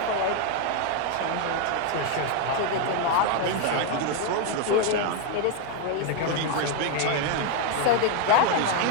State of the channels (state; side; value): different; both; correlation 0.01